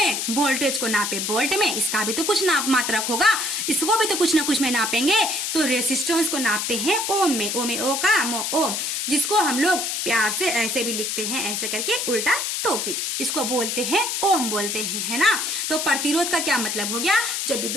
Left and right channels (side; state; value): left; noise; hiss, 1 dB below the sound